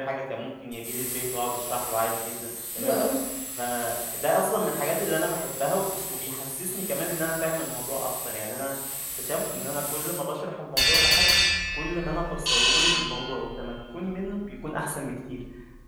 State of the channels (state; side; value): identical; both; correlation 1.00